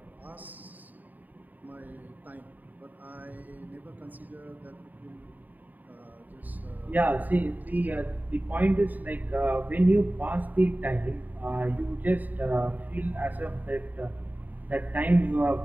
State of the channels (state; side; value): late; left; 0.084 ms